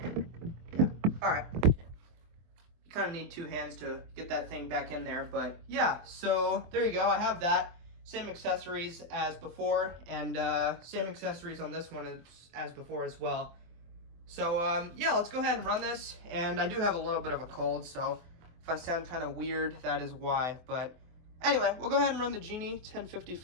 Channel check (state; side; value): late; left; 24 ms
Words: Yeah, all right. You kind of need two hands to get that thing back in there, but yeah, so there you go. I have that. Same accessories as before, and same accessories on this one as before as well. So yeah, let's go ahead and run this. And I do have a little bit of a cold, so if I sound kind of weird, that is why. But anyway, we'll go ahead and run the Genie